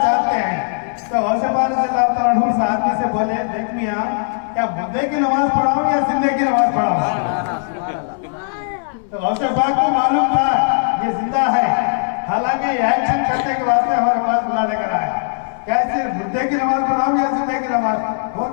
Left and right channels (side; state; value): right; silent; 61 dB below the other